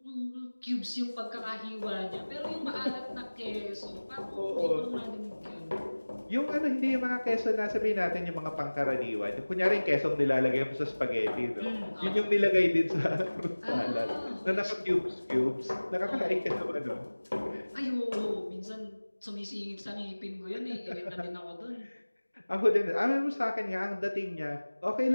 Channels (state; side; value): inverted; both; correlation -1.00